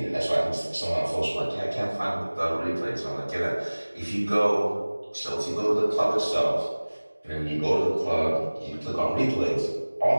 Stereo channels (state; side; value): inverted; both; correlation -1.00